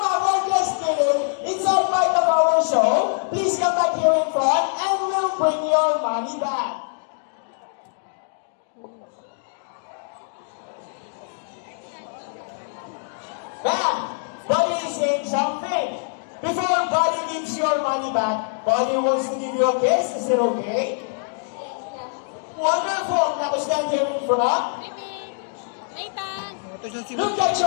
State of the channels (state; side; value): silent; right; digital silence